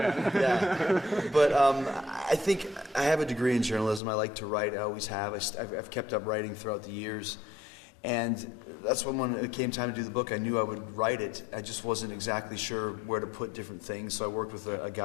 But I think I have a degree in journalism. I like to write. I always have. I've kept up writing throughout the years. And that's when it came time to do the book, I knew I would write it. I just wasn't exactly sure where to put different things. So I worked with a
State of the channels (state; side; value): drops out; right; at 4.0 s